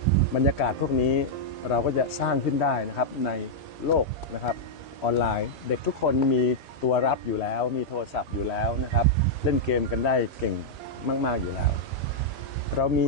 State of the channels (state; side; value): normal; both; correlation -0.05